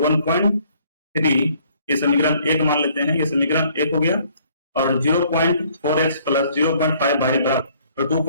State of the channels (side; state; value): both; inverted; correlation -0.61